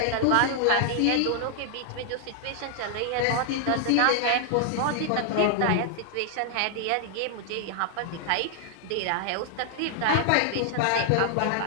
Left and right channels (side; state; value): both; different; correlation 0.00